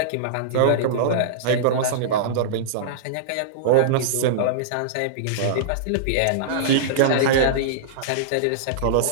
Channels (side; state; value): both; different; correlation -0.03